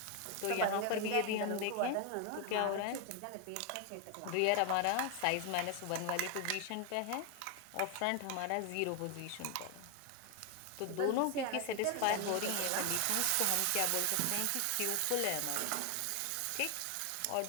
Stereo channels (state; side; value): different; both; correlation 0.01